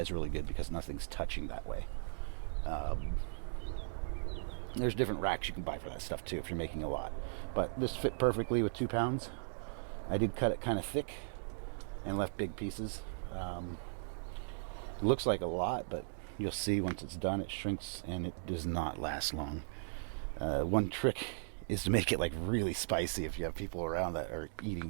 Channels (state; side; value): silent; left; digital silence